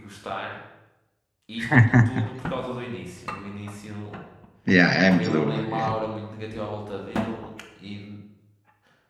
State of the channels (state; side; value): identical; both; correlation 1.00